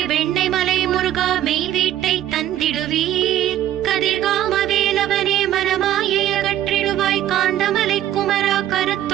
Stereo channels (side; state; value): left; quieter; 12.3 dB